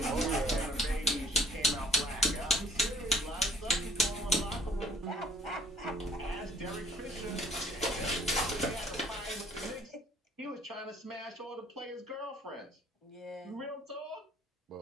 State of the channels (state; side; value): normal; both; correlation 0.55